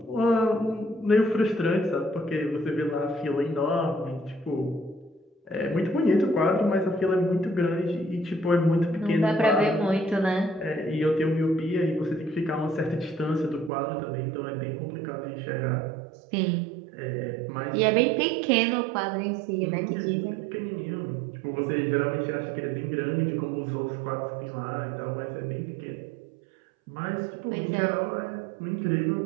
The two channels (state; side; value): drops out; left; at 13.7 s